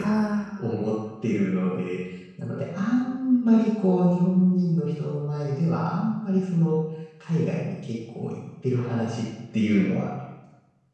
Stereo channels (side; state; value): both; identical; correlation 1.00